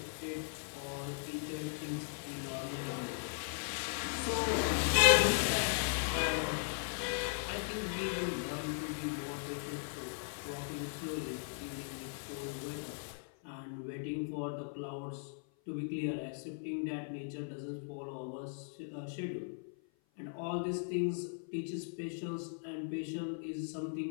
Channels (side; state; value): right; silent; 52 dB below the other